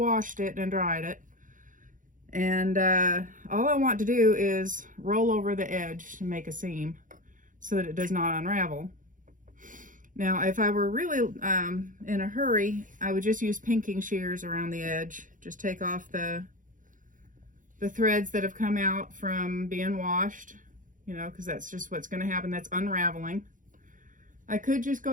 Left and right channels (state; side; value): late; left; 0.38 ms